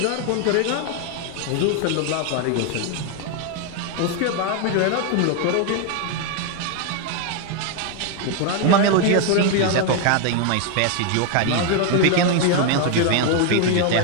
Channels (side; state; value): both; different; correlation 0.01